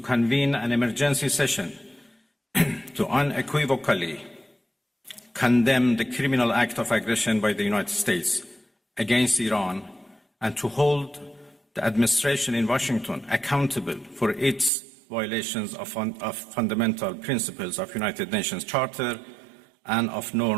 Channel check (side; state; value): left; drops out; at 14.7 s